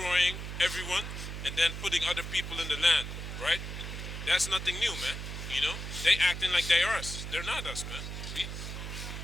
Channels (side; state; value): right; noise; hum, 7 dB below the sound